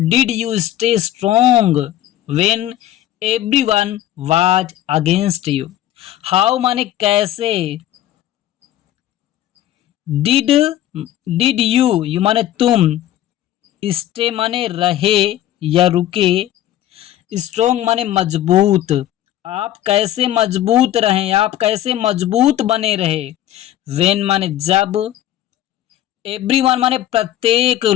you stay strong when everyone was against you. How माने कैसे, डिड, डिड यू माने तुम, स्टे माने रहे या रुके, स्ट्रोंग माने मजबूत, आप कैसे मजबूत रहें, आप कैसे मजबूत बने रहे। वेन माने जब, एवरीवन माने प्रत्येक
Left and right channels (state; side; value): quieter; right; 13.1 dB